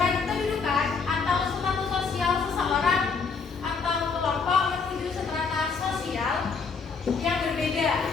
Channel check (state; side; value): quieter; right; 5.2 dB